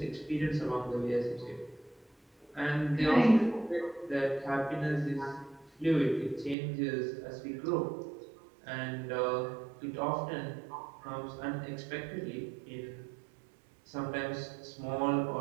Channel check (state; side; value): drops out; left; at 6.6 s